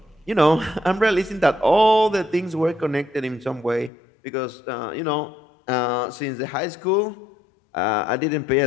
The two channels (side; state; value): right; drops out; at 3.9 s